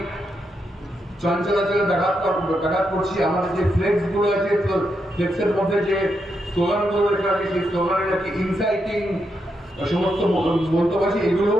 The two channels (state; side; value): normal; both; correlation 0.83